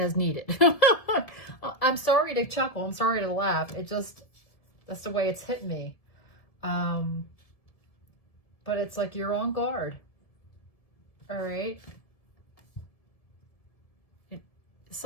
needed. I'm sorry to chuckle. I'm sorry to laugh. It just, that's the way it's hit me. But it's like you're on guard. All right.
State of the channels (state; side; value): late; right; 1.7 ms